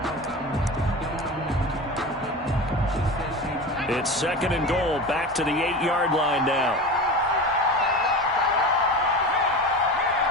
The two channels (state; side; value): normal; both; correlation 0.29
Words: It's second and goal, back to the 8-yard line now.